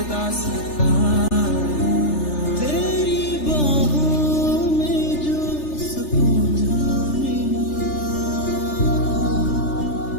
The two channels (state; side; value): late; right; 3.4 ms